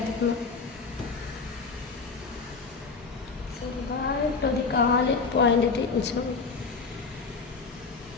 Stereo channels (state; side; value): quieter; right; 4.7 dB